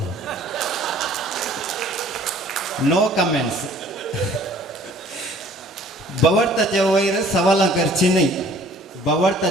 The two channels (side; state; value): both; normal; correlation 0.54